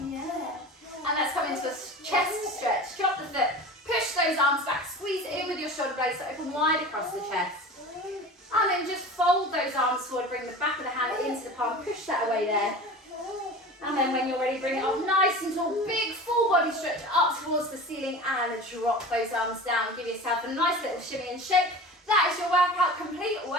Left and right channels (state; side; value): normal; both; correlation 0.35